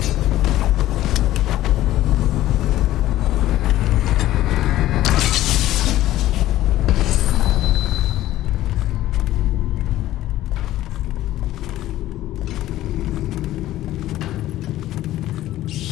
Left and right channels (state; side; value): quieter; right; 14.6 dB